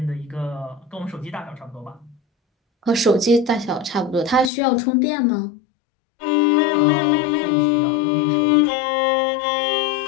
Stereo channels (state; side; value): drops out; right; at 4.5 s